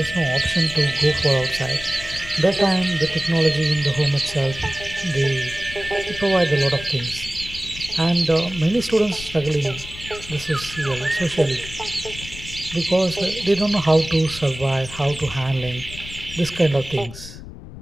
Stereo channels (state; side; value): noise; left; rumble, 14 dB below the sound